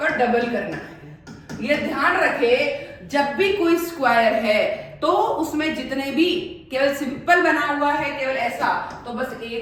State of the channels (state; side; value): identical; both; correlation 1.00